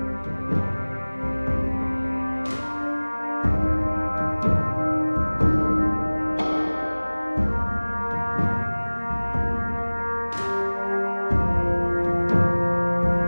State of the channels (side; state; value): both; inverted; correlation -1.00